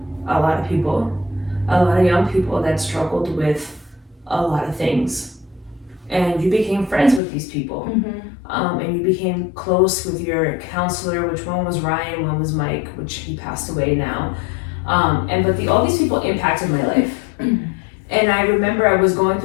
a lot of people, a lot of young people that struggled with a lot of things, and you became friends with these people, and you became close with your counselor, which one was Ryan, one was Mike, which he passed away now, but all these people impacted my life. And I remember I was going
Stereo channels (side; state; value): right; drops out; at 7.2 s